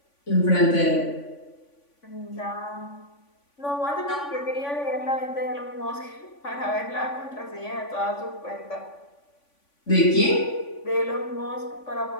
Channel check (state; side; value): late; right; 3.5 ms